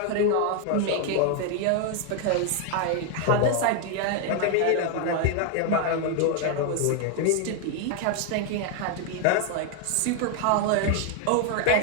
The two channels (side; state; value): both; different; correlation 0.01